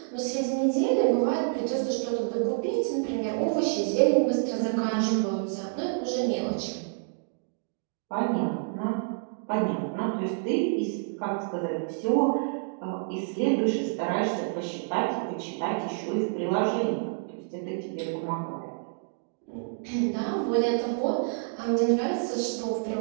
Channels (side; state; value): left; silent; digital silence